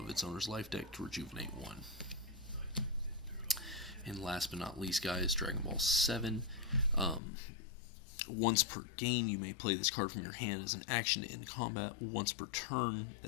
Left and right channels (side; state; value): right; drops out; at 7.2 s